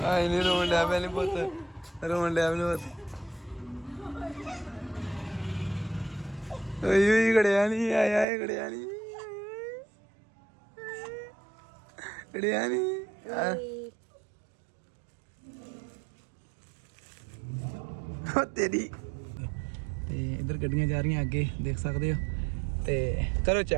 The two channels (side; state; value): left; drops out; at 8.2 s